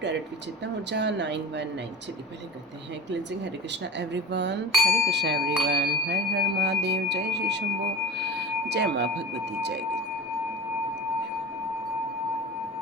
with Chetna Urja 919। चलिए पहले करते हैं cleansing. Hare Krishna everyone, Hare Krishna everyone, Har Har Mahadev, जय श्री शंभो, जय माँ भगवती, जय guru.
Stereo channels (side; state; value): both; normal; correlation 0.34